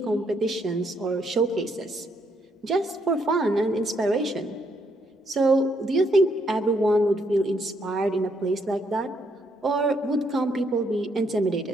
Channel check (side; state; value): both; normal; correlation 0.73